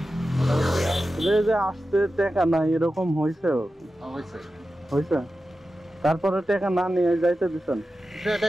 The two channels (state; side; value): normal; both; correlation 0.92